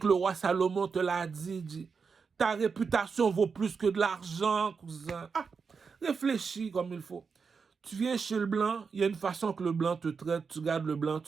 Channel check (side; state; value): left; quieter; 5.4 dB